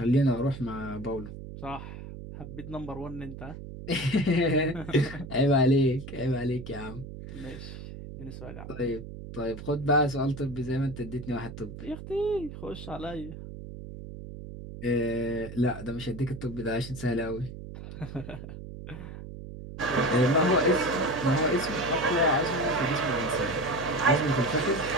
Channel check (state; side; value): noise; right; hum, 11 dB below the sound